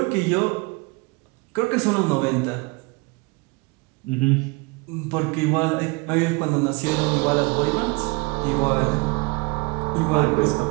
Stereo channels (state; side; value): quieter; left; 27.5 dB